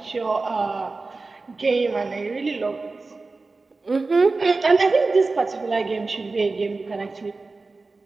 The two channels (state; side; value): quieter; left; 3.7 dB